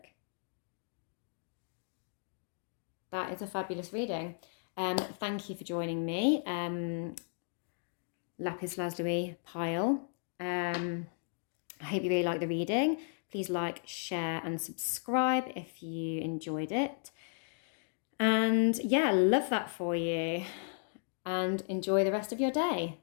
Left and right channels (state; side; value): silent; right; digital silence